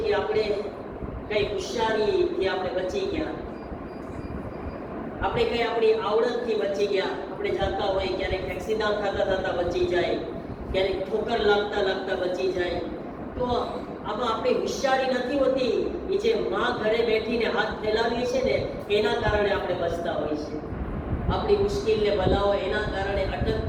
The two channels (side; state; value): both; identical; correlation 1.00